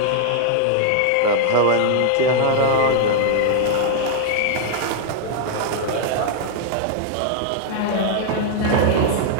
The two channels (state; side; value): different; both; correlation -0.01